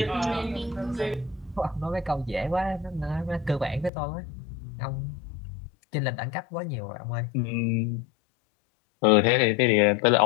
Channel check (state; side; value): drops out; right; at 3.9 s